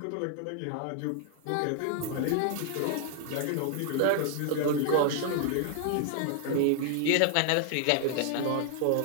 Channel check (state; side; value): different; both; correlation 0.00